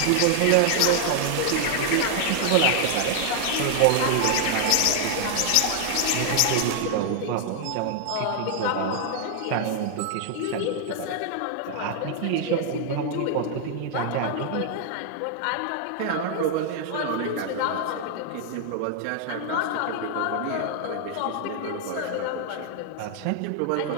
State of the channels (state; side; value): different; both; correlation 0.00